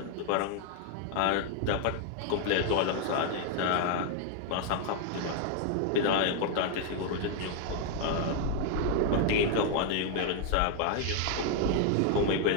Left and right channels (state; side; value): different; both; correlation 0.00